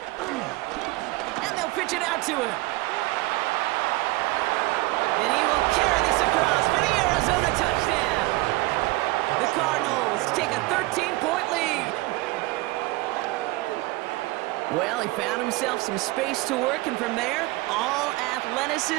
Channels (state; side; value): quieter; left; 21.0 dB